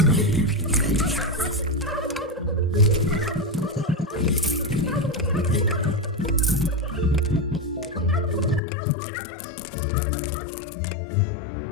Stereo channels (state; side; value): drops out; right; at 8.6 s